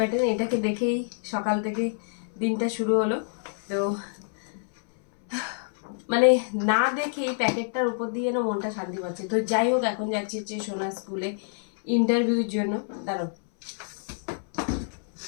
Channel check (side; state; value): right; silent; 60 dB below the other